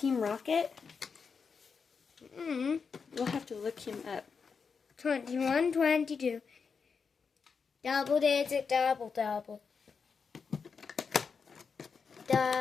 Rocket? We'll have to look him up. 21, 22. Double digit, double.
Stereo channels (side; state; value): right; quieter; 5.6 dB